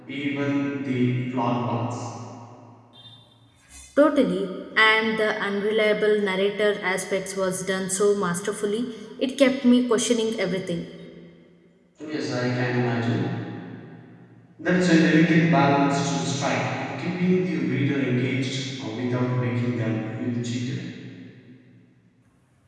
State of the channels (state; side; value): identical; both; correlation 1.00